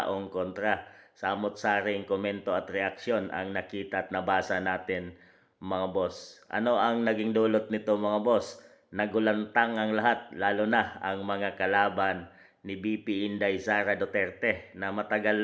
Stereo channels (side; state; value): both; identical; correlation 1.00